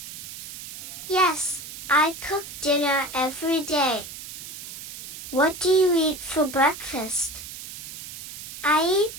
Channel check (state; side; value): noise; right; hiss, 12 dB below the sound